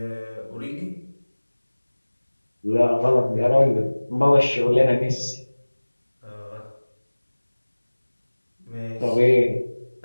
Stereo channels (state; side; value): inverted; both; correlation -1.00